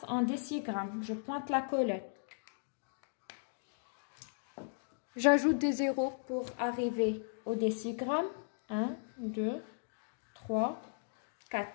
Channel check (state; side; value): silent; right; digital silence